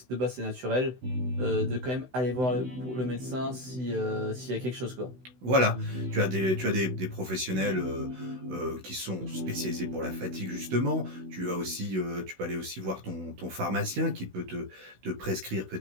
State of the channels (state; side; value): late; left; 16 ms